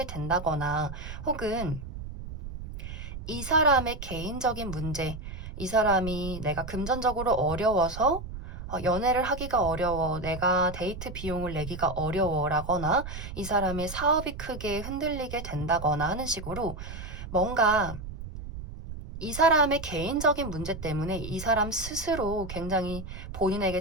된다거나, 혹은 이 사람의 개인적인 문제, 이 사람이 내가 금전적으로 어려워서 연애를 하기가 어려워, 내가 데이트 비용을 내기가 어려워라거나, 이 사람의 사업이 크게 흔들리게 된다거나 하는 식으로 뭔가 이 사람의 개인적인 문제 때문에 이 사람 스스로 굉장히 본인에게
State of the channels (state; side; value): noise; right; rumble, 10 dB below the sound